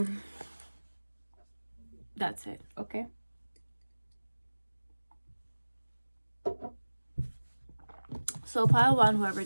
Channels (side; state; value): both; inverted; correlation -1.00